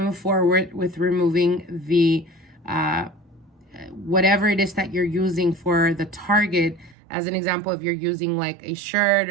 forward with removing the whatever it is that you're using for the target. As an example, if you're using like a shirt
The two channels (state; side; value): drops out; left; at 7.0 s